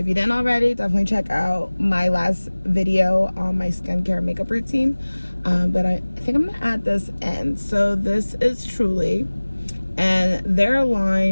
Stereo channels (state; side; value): inverted; both; correlation -1.00